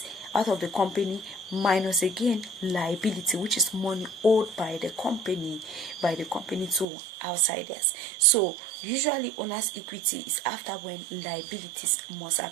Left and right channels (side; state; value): left; drops out; at 6.9 s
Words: out of the company minus again liability, which is money owed by the company to outsiders. So usually owner's equity is after when liabilities must